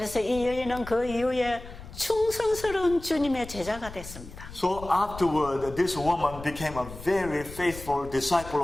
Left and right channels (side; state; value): left; noise; rumble, 14 dB below the sound